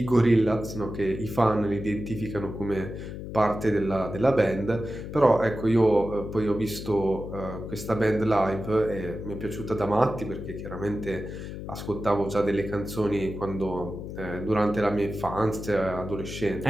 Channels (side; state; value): left; noise; hum, 9 dB below the sound